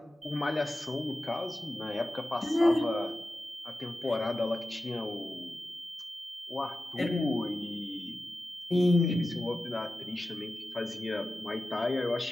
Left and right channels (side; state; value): both; normal; correlation 0.93